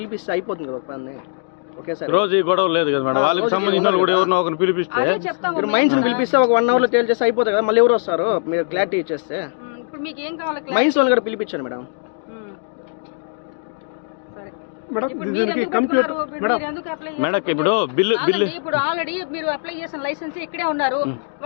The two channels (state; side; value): silent; right; 62 dB below the other